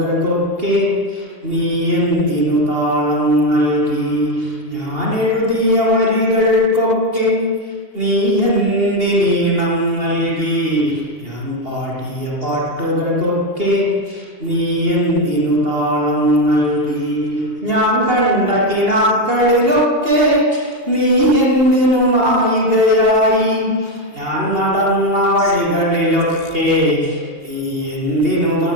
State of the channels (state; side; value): late; left; 2.8 ms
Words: നീ എന്തിനു താളം നൽകി? ഞാൻ എഴുതിയ വരികൾക്കൊക്കെ നീ എന്തിനീണം നൽകി? ഞാൻ പാടിയ പാട്ടുകൾക്കൊക്കെ നീ എന്തിനു താളം നൽകി? ഞാൻ കണ്ട കിനാക്കളിലൊക്കെ നീ എന്തിനു നായികയായി? ഞാൻ നടന്ന വഴികളിലൊക്കെ നീ എന്തിനു